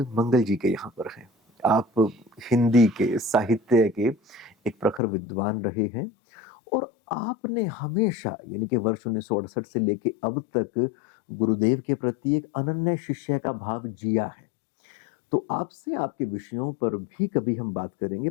मंगल जी के यहाँ पर हैं। आप हिंदी के साहित्य के एक प्रखर विद्वान रहे हैं और आपने हमेशा यानी कि वर्ष 1968 से लेके अब तक गुरुदेव के प्रति एक अनन्य शिष्य का भाव जिया है। तो आपसे आपके विषयों पर भी कभी हम बात करेंगे,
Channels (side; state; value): right; drops out; at 5.0 s